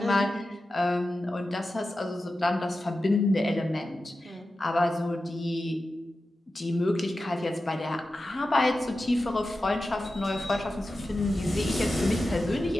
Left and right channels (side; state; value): both; normal; correlation 0.93